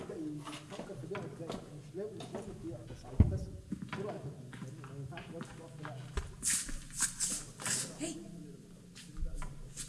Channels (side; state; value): both; identical; correlation 1.00